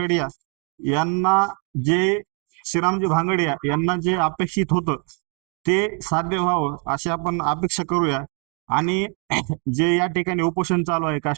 यांना जे अपेक्षित होतं ते साध्य व्हावं अशी आपण अपेक्षा करूया. आणि जे या ठिकाणी उपोषण चालू आहे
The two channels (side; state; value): left; quieter; 37.8 dB